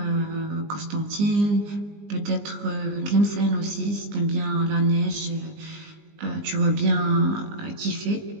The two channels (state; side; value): late; left; 20 ms